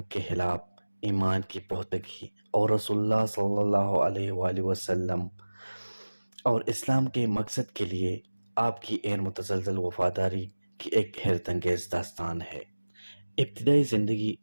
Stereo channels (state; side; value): inverted; both; correlation -1.00